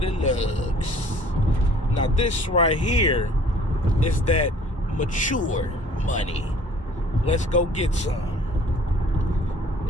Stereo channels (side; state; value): both; normal; correlation 0.53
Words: of lugs. Now this right here is that mature money. Let's go get some.